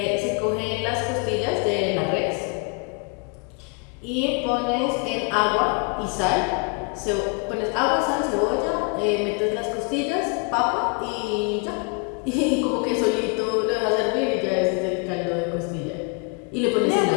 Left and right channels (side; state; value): right; quieter; 34.3 dB